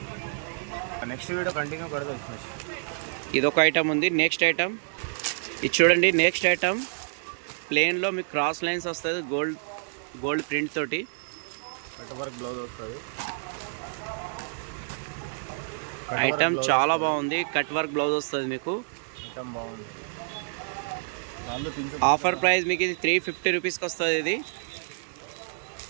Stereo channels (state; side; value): silent; left; 59 dB below the other